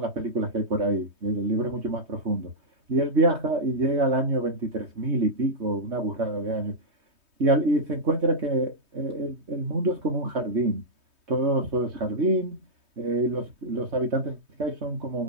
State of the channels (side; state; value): left; late; 3.2 ms